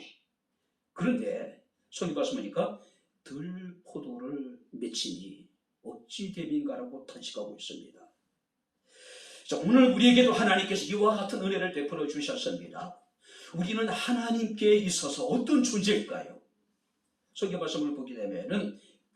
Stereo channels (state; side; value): identical; both; correlation 1.00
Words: 그런데 성경 말씀하니까 들포도를 맺히니 어찌 됨인가라고 탄식하고 있습니다. 자, 오늘 우리에게도 하나님께서 이와 같은 은혜를 베풀어 주셨습니다. 우리는 하나님께 있어서 어떤 존재일까요? 성경 말씀을 보게 되면은